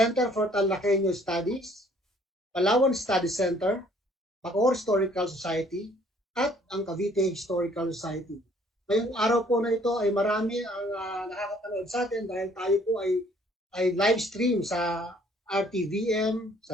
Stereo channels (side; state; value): both; normal; correlation 0.60